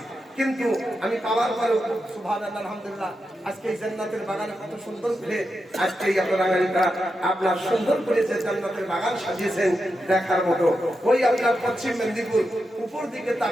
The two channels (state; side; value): normal; both; correlation 0.87